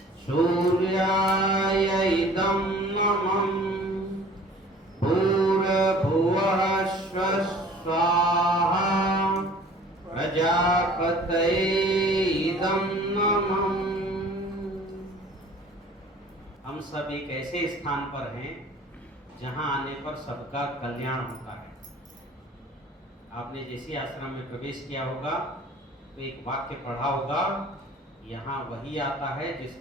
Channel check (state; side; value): normal; both; correlation 0.49